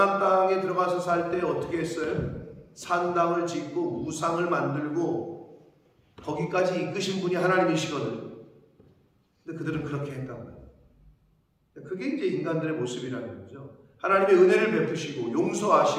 땅에 들어가서 살 때 어떻게 했어요? 산당을 짓고 우상을 만들고 거기까지 이끄신 분이 하나님이시거든. 근데 그들은 그렇게 했단 말이에요. 그게 이제 인간들의 모습이라는 거죠. 하나님의 은혜를 베푸시고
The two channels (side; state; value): both; identical; correlation 1.00